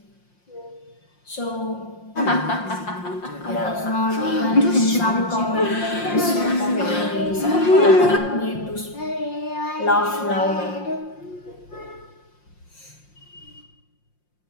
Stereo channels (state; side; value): late; right; 5.6 ms